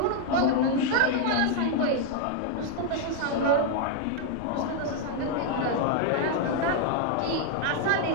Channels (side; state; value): both; different; correlation 0.00